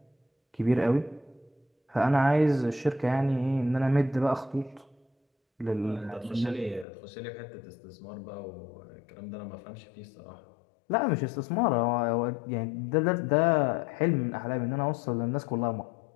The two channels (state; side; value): drops out; right; at 6.9 s